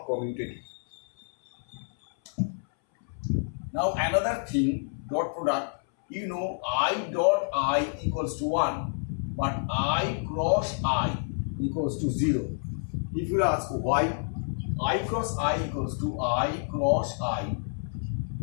commutative. Now another thing, dot product, you know I dot I equals to 1, but I cross I equals to 0. If you ask why, I cross I equals to I cross I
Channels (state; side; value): silent; right; 59 dB below the other